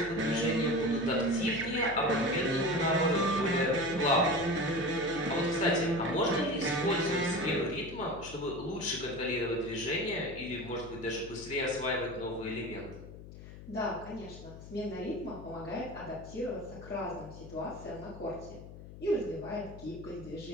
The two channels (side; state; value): left; noise; hum, 14 dB below the sound